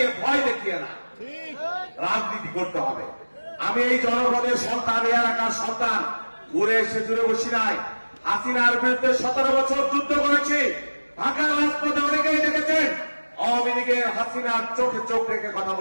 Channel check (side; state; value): both; inverted; correlation -1.00